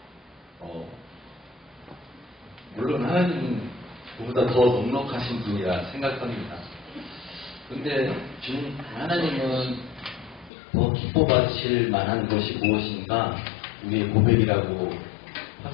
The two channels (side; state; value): right; drops out; at 10.5 s